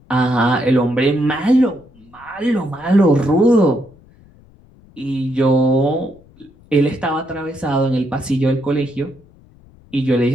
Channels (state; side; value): noise; left; rumble, 27 dB below the sound